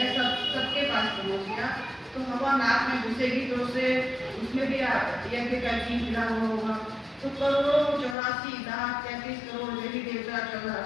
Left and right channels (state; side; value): drops out; right; at 8.2 s